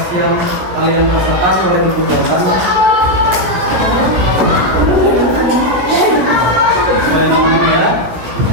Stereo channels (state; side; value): late; left; 17 ms